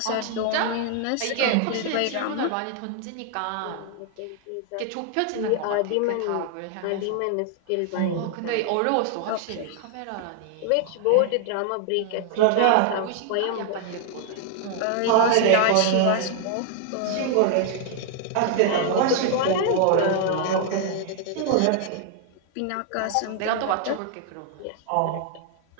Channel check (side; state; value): both; different; correlation 0.00